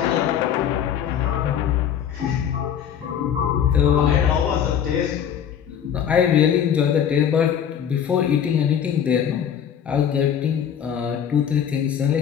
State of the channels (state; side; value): quieter; right; 8.8 dB